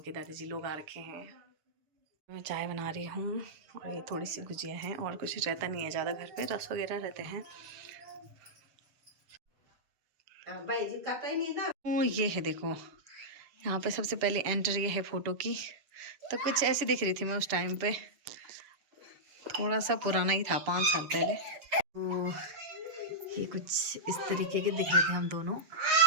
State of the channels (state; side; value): late; left; 6.9 ms